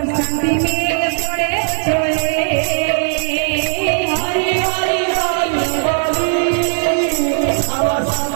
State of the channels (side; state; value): left; silent; digital silence